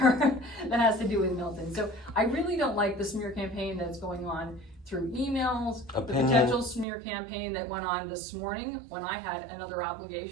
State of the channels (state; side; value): drops out; left; at 6.9 s